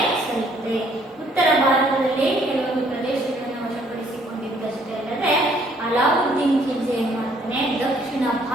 ಸಲ್ಲಿದೆ. ಉತ್ತರ ಭಾರತದಲ್ಲಿ ಕೆಲವೊಂದು ಪ್ರದೇಶಗಳನ್ನು ವಶಪಡಿಸಿಕೊಂಡಿದ್ದಷ್ಟೇ ಅಲ್ಲದೆ ಅಲಾವುದ್ದೀನ್ ಖಿಲ್ಜಿ ಏನ್ ಮಾಡ್ತಾನೆ ದಕ್ಷಿಣ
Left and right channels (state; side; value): normal; both; correlation 0.63